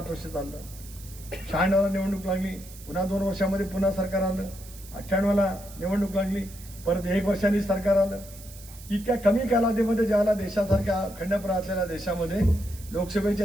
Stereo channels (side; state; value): right; noise; hiss, 18 dB below the sound